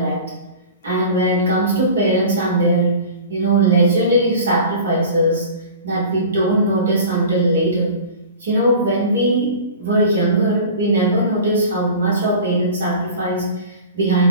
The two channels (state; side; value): inverted; both; correlation -0.39